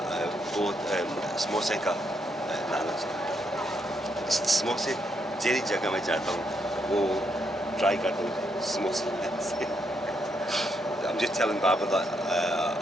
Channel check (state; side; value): normal; both; correlation 0.78